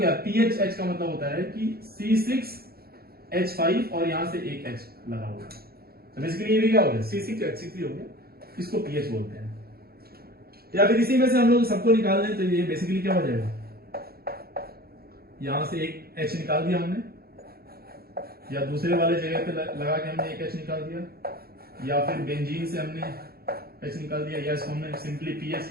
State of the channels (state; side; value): late; left; 0.45 ms